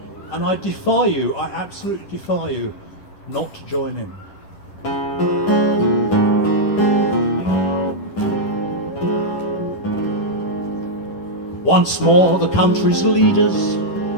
And I defy you, I absolutely defy you, not to join in. Once more the country's leaders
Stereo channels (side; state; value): right; late; 11 ms